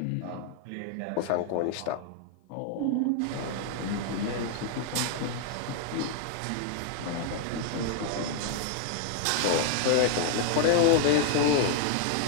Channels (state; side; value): different; both; correlation 0.00